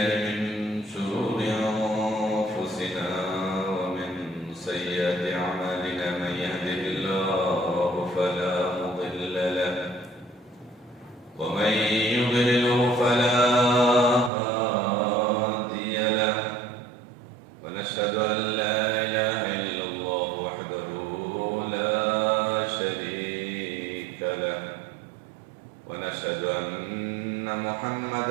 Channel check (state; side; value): drops out; left; at 14.3 s